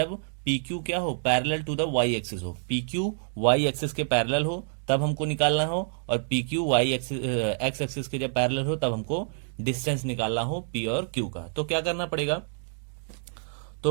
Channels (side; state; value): left; silent; digital silence